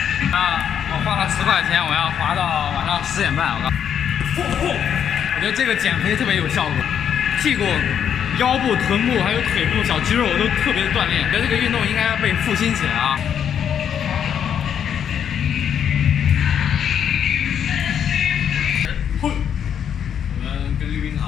我花了10块钱，我要滑到晚上10点半。我觉得这个减肥特别有效果，屁股、腰部、臀部还有腿部小肌肉都特别的锻炼。我觉得这个运动应该要被复兴起来啊！我们跟溜冰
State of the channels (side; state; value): right; quieter; 8.6 dB